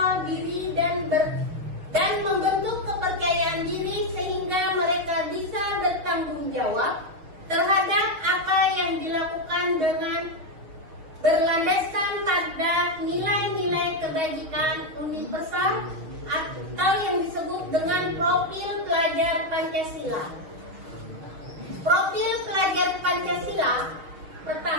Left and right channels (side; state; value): left; late; 6.3 ms